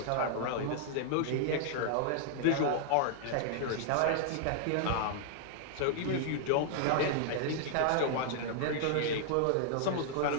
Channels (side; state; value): both; different; correlation 0.00